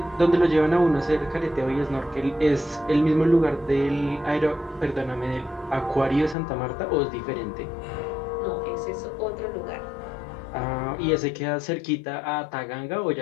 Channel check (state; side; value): drops out; right; at 6.4 s